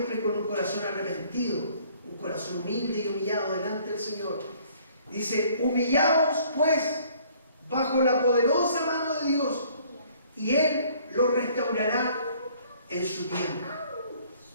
con un corazón arrepentido, un corazón humilde y humillado delante del Señor. Dice, humillaos pues bajo la poderosa mano de Dios y Él los restaurará en su tiempo.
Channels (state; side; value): inverted; both; correlation -0.58